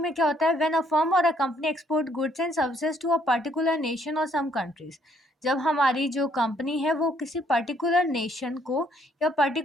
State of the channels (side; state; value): both; normal; correlation 0.67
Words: में क्या होता है, when a firm or a company export goods and services to a particular nation or some countries. जब हमारी जो कंपनी है वो किसी पर्टिकुलर नेशन को या